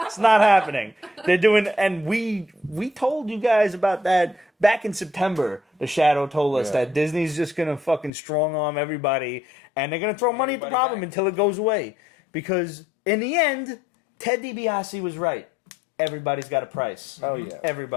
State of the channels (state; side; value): drops out; right; at 8.1 s